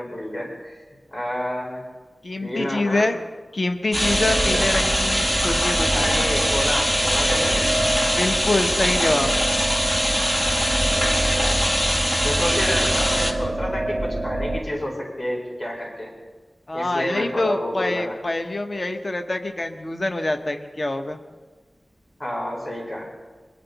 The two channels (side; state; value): both; normal; correlation 0.96